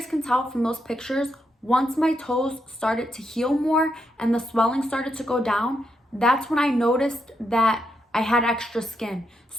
can tell from those pictures, once my toes started to heal more and the swelling started to go down, that's when I noticed that I had extra skin.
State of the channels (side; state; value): both; normal; correlation 0.81